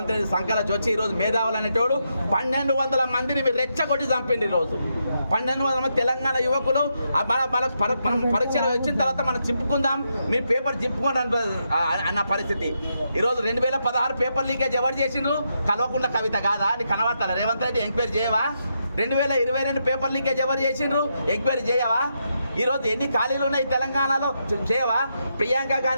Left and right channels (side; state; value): both; inverted; correlation -0.82